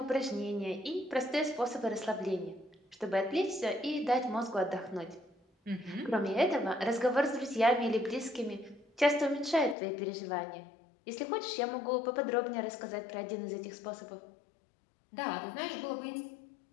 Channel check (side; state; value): right; drops out; at 9.8 s